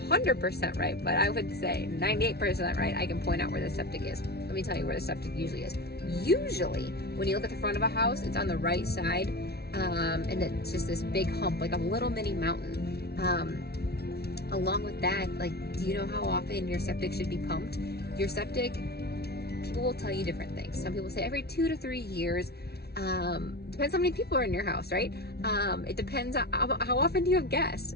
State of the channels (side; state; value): right; late; 0.47 ms